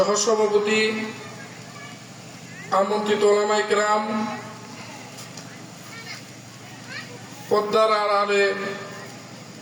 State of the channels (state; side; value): identical; both; correlation 1.00